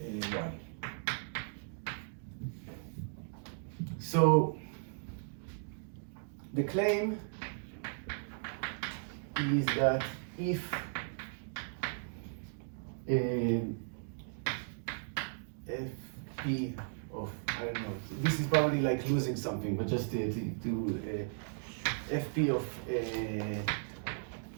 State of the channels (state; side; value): silent; left; digital silence